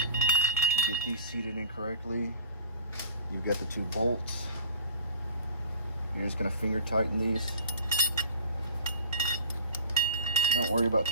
get these seated in correctly. You've got the 2 bolts. You're just gonna finger tighten these. Don't worry about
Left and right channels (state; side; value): inverted; both; correlation -0.41